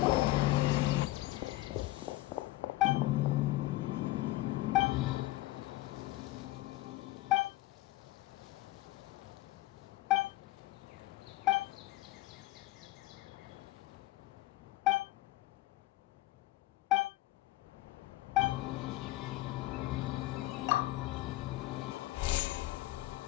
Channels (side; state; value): right; quieter; 17.7 dB